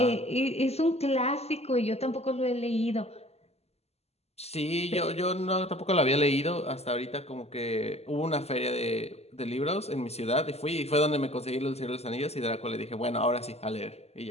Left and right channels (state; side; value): late; right; 0.30 ms